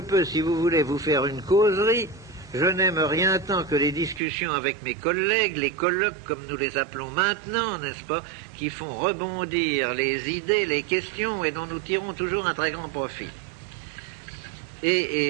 si vous voulez, vous faire une causerie. Je n'aime rien tant que les discussions avec mes collègues, les colloques, comme nous les appelons maintenant, n'est-ce pas, qui font rebondir les idées, les questions, et dont nous tirons toujours un très grand profit.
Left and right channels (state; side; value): drops out; left; at 4.2 s